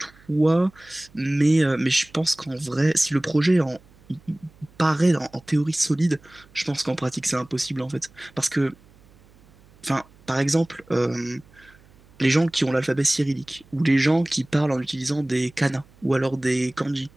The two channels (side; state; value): right; noise; hum, 28 dB below the sound